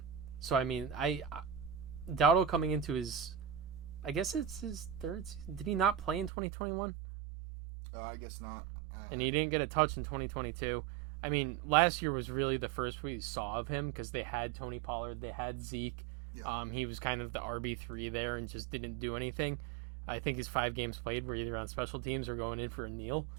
I mean, Dowdle coming into his, I guess it's his third season. Did he not play in 2021? I guess not. And he didn't get a touch in 2022. I mean, last year was really the first we saw of him because they had Tony Pollard, they had Zeke. Yeah. He was kind of the RB3 there and just didn't do anything. I think his 5 games played were either on special teams or going in for a kneel.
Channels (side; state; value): left; drops out; at 6.3 s